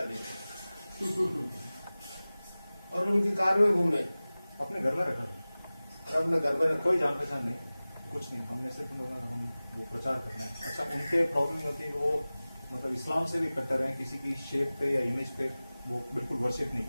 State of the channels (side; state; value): both; inverted; correlation -0.98